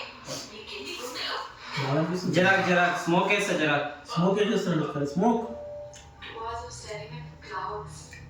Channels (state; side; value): identical; both; correlation 1.00